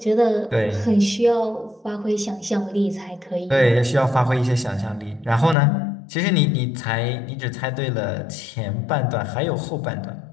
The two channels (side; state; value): right; drops out; at 5.6 s